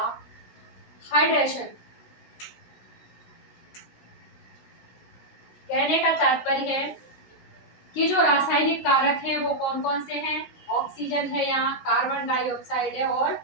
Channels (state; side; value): late; right; 16 ms